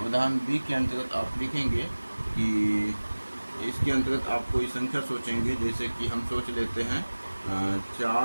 उदाहरण बी के अंतर्गत आप लिखेंगे कि इसके अंतर्गत आप कोई संख्या सोचेंगे, जैसे कि हम सोच लेते हैं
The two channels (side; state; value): both; inverted; correlation -1.00